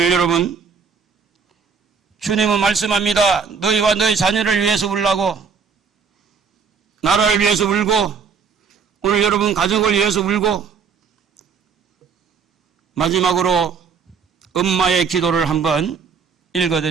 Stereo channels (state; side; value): quieter; left; 5.9 dB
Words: 여러분, 주님은 말씀합니다. 너희와 너희 자녀를 위해서 울라고, 나라를 위해서 울고, 오늘 여러분 가족을 위해서 울고. 마지막으로 엄마의 기도를 한번